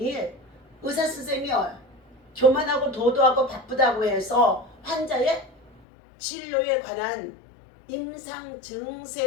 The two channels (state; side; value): drops out; right; at 5.8 s